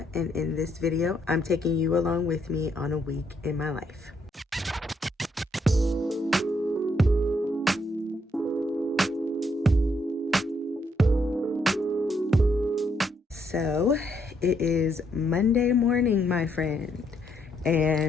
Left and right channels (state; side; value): normal; both; correlation 0.74